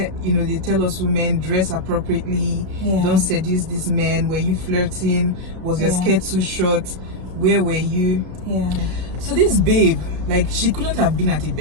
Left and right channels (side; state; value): left; late; 32 ms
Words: they tell us women dress appropriately, don't seduce this man. Were you flirting? Was your skirt too short? Where were you? Yeah. So this babe, like, she couldn't have been at a